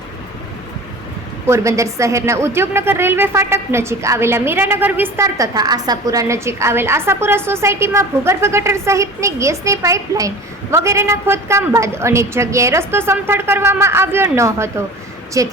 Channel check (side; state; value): both; normal; correlation 0.38